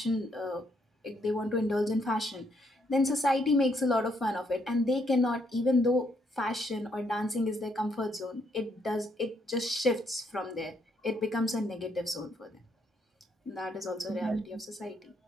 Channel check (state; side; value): normal; both; correlation 0.73